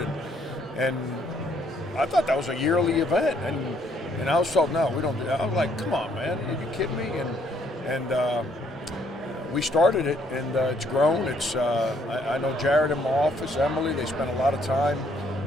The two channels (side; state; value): both; normal; correlation 0.67